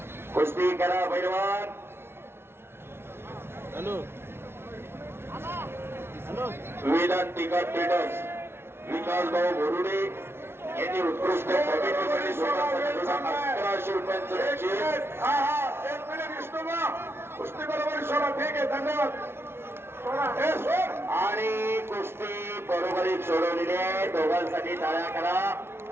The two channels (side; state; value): left; late; 0.12 ms